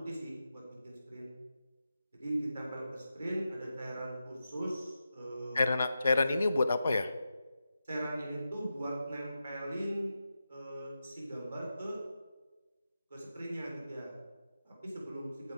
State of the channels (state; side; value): inverted; both; correlation -0.90